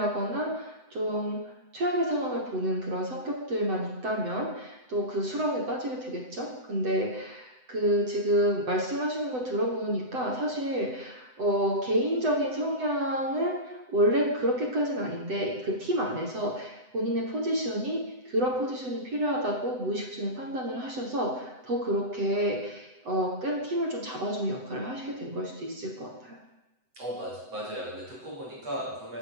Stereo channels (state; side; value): late; left; 7.9 ms